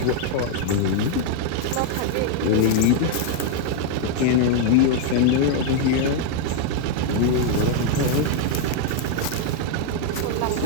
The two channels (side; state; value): both; different; correlation 0.00